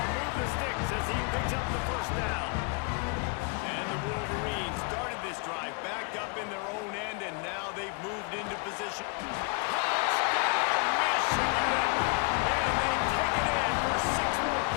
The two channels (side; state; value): right; quieter; 32.5 dB